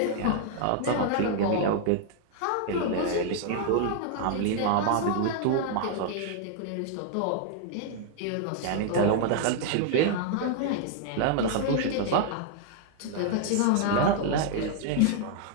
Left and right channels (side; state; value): both; different; correlation 0.00